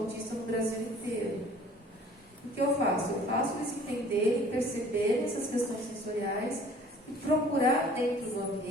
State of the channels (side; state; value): both; normal; correlation 0.51